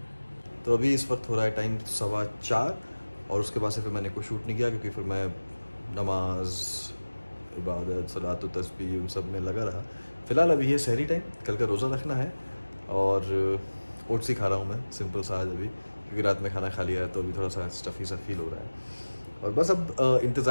तो अभी इस वक्त हो रहा है टाइम 4:15, और उसके बाद से फिर मैंने कोई शूट नहीं किया क्योंकि फिर मैं नमाज, इबादत, सलात, तस्बीह उन सब में लगा रहा। फ़िलहाल अभी ये सहरी टाइम, कल का रोज़ा रखना है, और ओट्स ही खा रहा हूँ मैं सिंपल सा आज अभी, क्योंकि रात में खाना खा लिया है तो अभी थोड़ा सा स्टफ़ी सा फील हो रहा है। और बस अब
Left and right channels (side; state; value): both; inverted; correlation -1.00